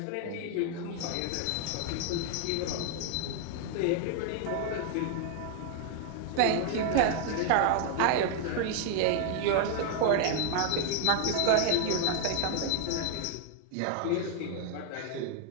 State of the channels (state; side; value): different; both; correlation 0.00